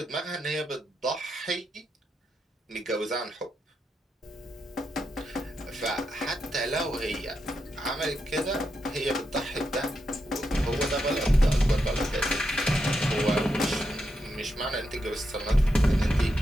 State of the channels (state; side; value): normal; both; correlation 0.84